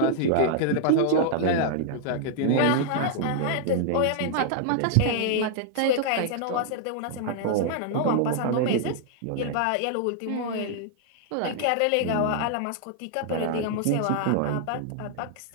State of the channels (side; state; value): both; different; correlation -0.01